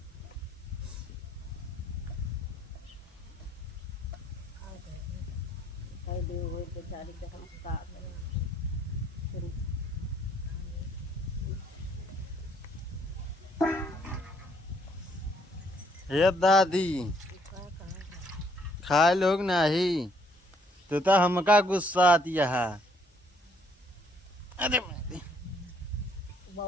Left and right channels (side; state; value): both; normal; correlation 0.66